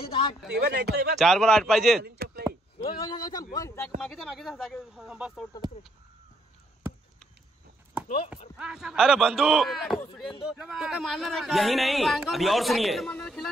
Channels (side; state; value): both; normal; correlation 0.71